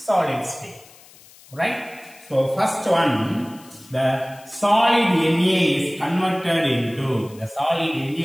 state, right? So first one, the solid Na is converted into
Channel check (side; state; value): left; noise; hiss, 24 dB below the sound